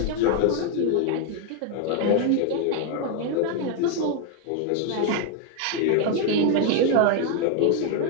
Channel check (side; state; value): both; different; correlation 0.00